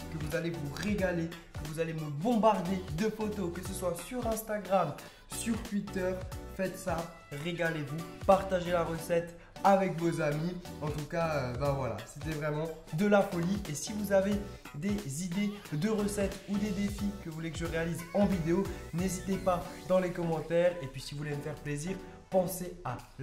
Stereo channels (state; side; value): identical; both; correlation 1.00